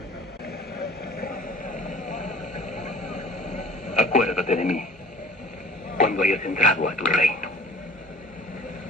Acuérdate de mí cuando hayas entrado a tu reino.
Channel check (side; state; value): both; normal; correlation 0.48